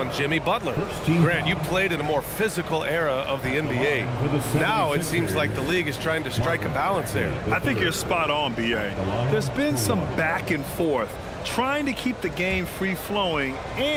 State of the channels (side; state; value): both; identical; correlation 1.00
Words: Jimmy Butler. Grant, you played in a more physical era of the NBA. Now it seems like the league is trying to strike a balance there. I think you're spot on, B.A. There's been some back and forth, trying to keep the game free-flowing